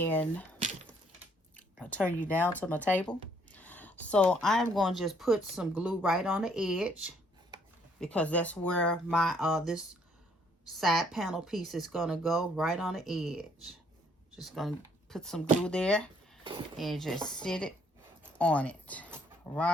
I'll turn you down to my table. So I'm going to just put some glue right on the edge because that's where my this side panel piece is going to go, right on the edge. Just going to put some glue there and just sit it on it,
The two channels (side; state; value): both; normal; correlation 0.66